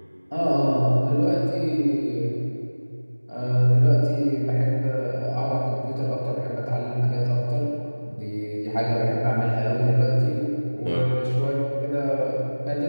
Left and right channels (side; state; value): both; inverted; correlation -1.00